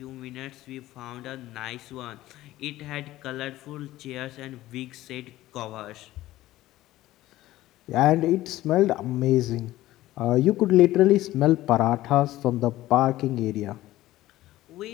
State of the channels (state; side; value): quieter; right; 15.8 dB